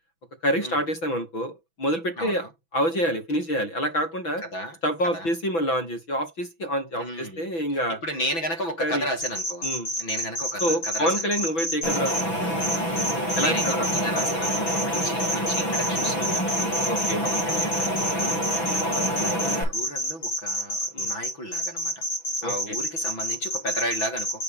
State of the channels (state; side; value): late; right; 6.0 ms